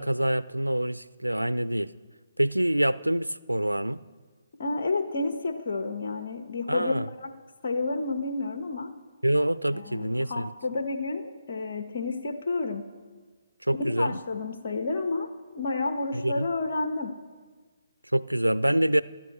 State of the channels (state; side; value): inverted; both; correlation -0.92